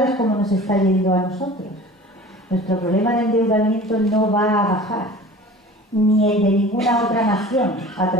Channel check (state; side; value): normal; both; correlation 0.41